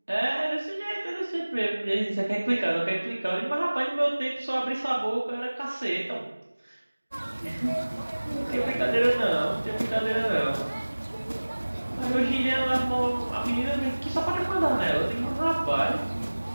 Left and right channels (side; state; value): both; inverted; correlation -1.00